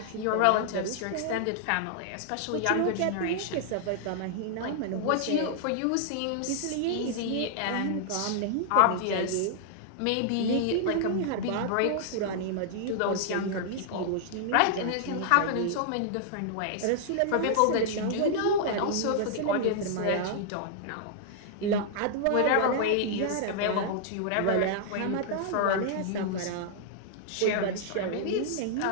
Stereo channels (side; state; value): both; different; correlation -0.01